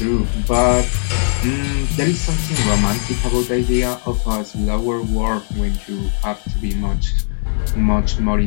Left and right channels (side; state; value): right; silent; digital silence